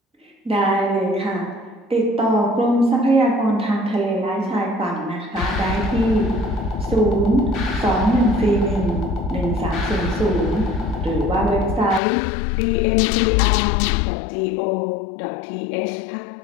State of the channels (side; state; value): right; drops out; at 12.0 s